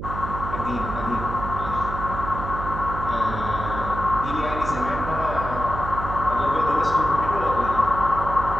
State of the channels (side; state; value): right; noise; hum, 7 dB below the sound